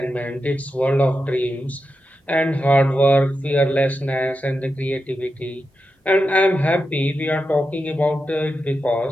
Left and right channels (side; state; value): both; normal; correlation 0.89